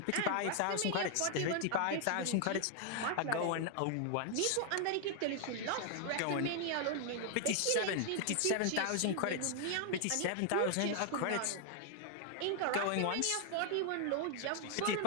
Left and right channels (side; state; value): both; different; correlation 0.00